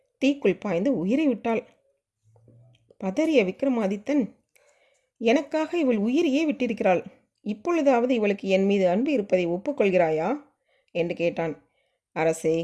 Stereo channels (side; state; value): both; identical; correlation 1.00